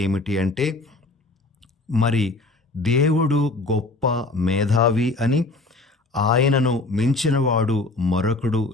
ఏమిటి అంటే, మరి దేవుడు గొప్ప మేధావి అని, ఆయనను మించినవాడు మరొకడు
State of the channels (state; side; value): quieter; right; 3.3 dB